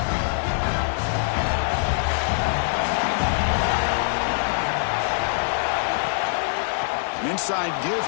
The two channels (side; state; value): right; silent; 63 dB below the other